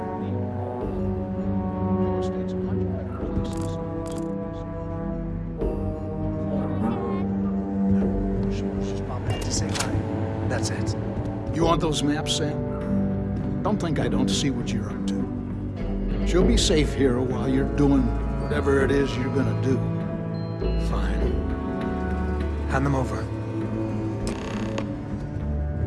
Your estate's a much better place than some of these. Just pop back to say hi. That's it. You want those maps, Sam? Don't think I don't see what you're up to. She'll be safe here while you're doing whatever it is you're gonna do. Fine. Hand them over.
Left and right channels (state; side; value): identical; both; correlation 1.00